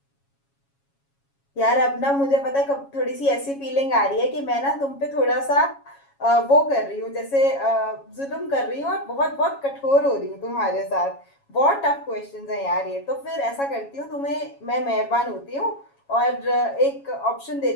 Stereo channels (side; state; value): right; late; 7.2 ms